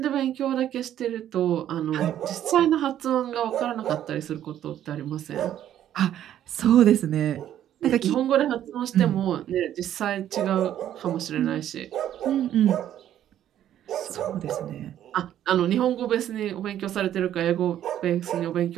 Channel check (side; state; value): left; quieter; 11.3 dB